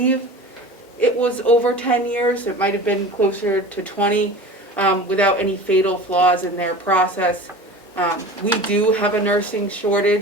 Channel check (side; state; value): both; normal; correlation 0.36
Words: it was over 10 years. It might have been closer to 20, without any fatal flaws in their process. We do have a nursing